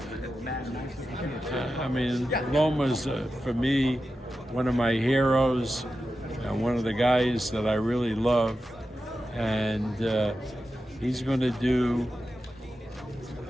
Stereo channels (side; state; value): both; normal; correlation 0.91